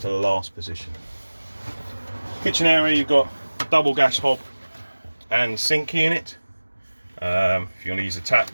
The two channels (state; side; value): inverted; both; correlation -1.00